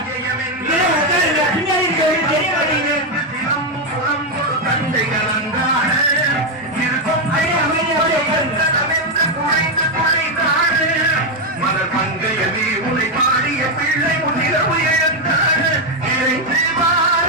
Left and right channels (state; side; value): normal; both; correlation 0.04